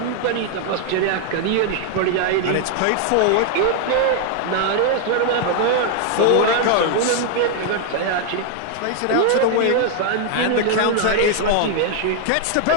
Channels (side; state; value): both; different; correlation 0.00